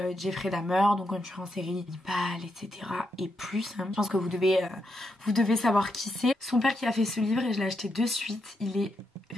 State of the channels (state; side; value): normal; both; correlation 0.82